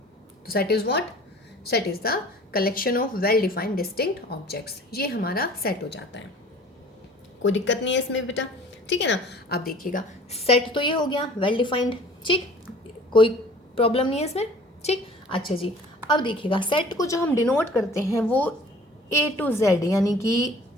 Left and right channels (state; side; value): normal; both; correlation 0.48